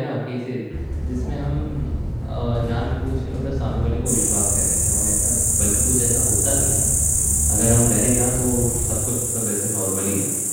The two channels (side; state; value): both; identical; correlation 1.00